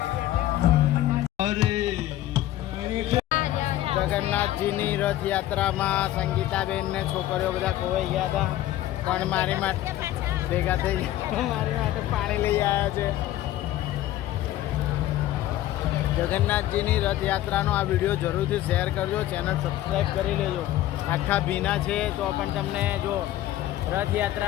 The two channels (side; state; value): right; quieter; 14.1 dB